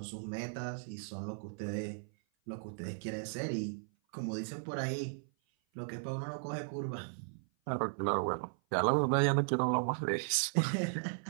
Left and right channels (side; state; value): left; silent; 54 dB below the other